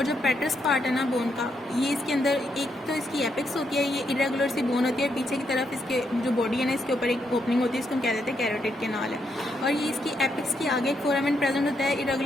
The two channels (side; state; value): both; normal; correlation 0.79